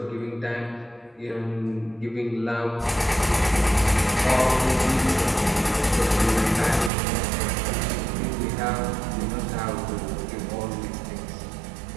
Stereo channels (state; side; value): drops out; left; at 6.9 s